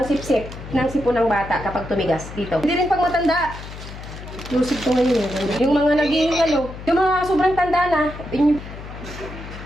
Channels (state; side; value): noise; left; hum, 12 dB below the sound